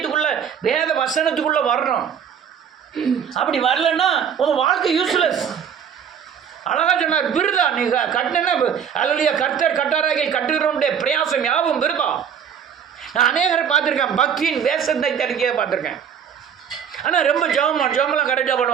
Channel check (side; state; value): left; quieter; 8.0 dB